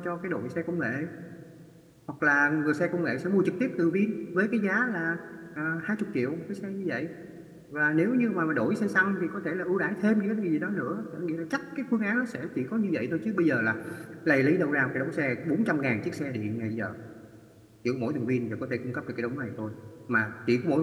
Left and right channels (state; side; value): identical; both; correlation 1.00